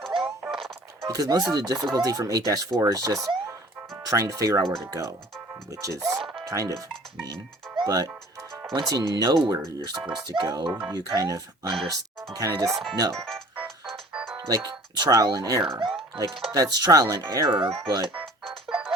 Because most of the difficulty from 8-4 is just trying to figure out where to go, which is kind of mean. But once you know where you're supposed to go, you kind of understand. You kind of just know. Like trial and error. Like that's trial and error, but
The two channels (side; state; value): both; normal; correlation 0.49